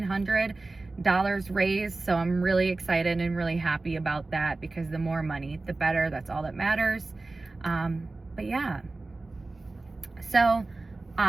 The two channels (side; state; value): left; quieter; 3.3 dB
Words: raised. So I'm really excited and really happy about that, because the more money, the better. That's all that matters. But yeah. So